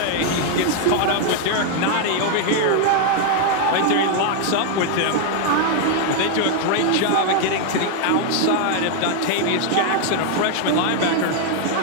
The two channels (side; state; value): both; different; correlation 0.00